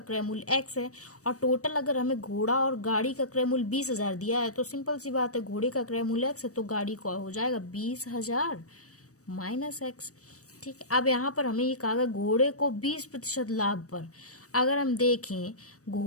मूल्य x है और टोटल अगर हमें घोड़ा और गाड़ी का क्रय मूल्य 20,000 दिया है तो सिंपल सी बात है, घोड़े का क्रय मूल्य x है तो गाड़ी का हो जाएगा 20,000 माइनस x। ठीक है, अब यहाँ पर हमें ये कहा गया घोड़े को 20% लाभ पर। अगर हम देखें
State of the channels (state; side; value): late; right; 0.66 ms